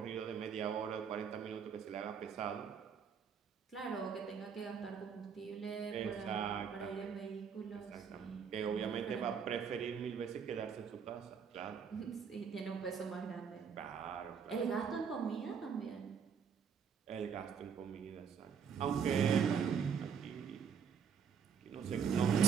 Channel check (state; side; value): quieter; left; 6.9 dB